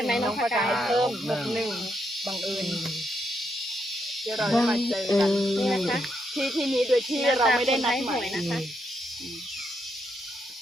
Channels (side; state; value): both; normal; correlation 0.79